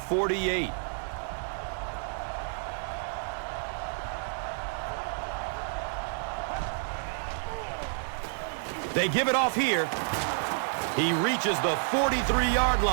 They give it off here. He reaches the 43-yard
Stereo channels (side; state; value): left; silent; 58 dB below the other